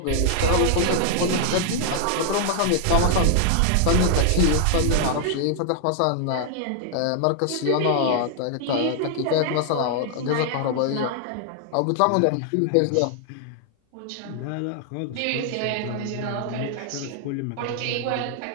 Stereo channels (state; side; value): different; both; correlation 0.00